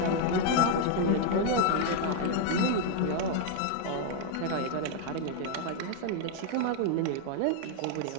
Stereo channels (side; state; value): both; different; correlation 0.00